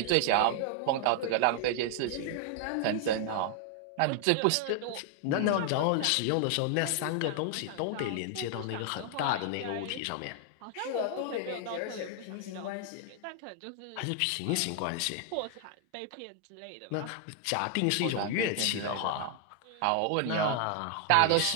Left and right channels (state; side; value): different; both; correlation 0.00